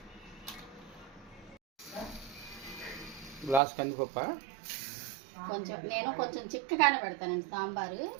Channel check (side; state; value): left; drops out; at 3.6 s